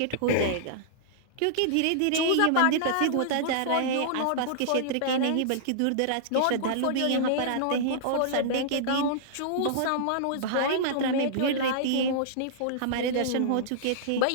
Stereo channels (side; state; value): both; different; correlation -0.02